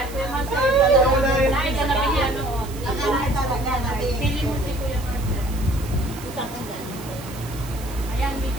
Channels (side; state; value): right; noise; hiss, 16 dB below the sound